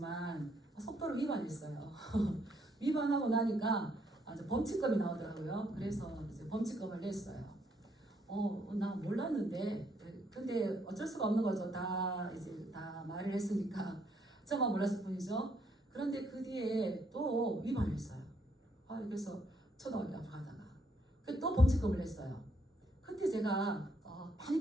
속도를 위반했어요. 위반하고 나니까 범칙금이 나오더라고요. 그래서 이제 범칙금을 냈어요. 나 몰랐는데 근데 어쩔 수가 없는 거죠. 이제 다 말을 했으니까 저만 몰랐을 뿐이죠. 그런데 그 뒤에 또 위반했어요. 그래서 초등학교 앞으로 가다가 또 범칙금을 냈어요. 그때 제가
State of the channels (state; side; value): normal; both; correlation 0.72